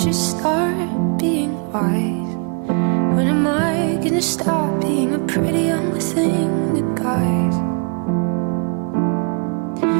start being wise? When am I gonna stop being a pretty young thing to guys?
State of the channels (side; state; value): left; quieter; 36.8 dB